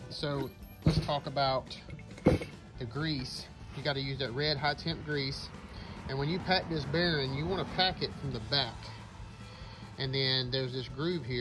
So let's talk about the grease. You got to use that red high temp grease. And when you pack this bearing, you want to pack it from the back. And then there's this groove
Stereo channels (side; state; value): both; identical; correlation 1.00